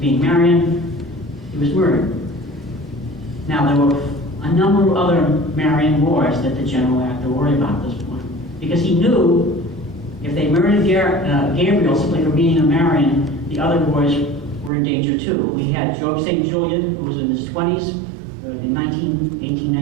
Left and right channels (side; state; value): left; drops out; at 14.7 s